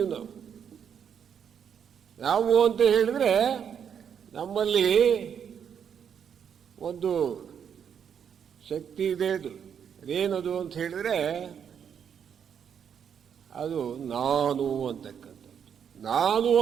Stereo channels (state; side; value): quieter; left; 7.9 dB